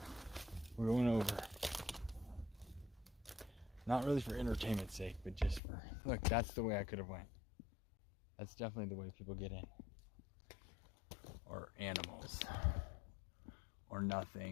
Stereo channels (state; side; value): drops out; right; at 5.6 s